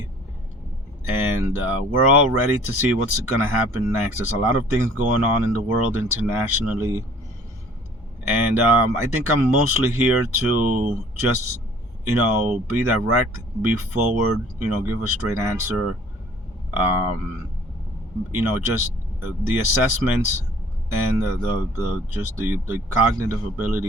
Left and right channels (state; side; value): normal; both; correlation 0.53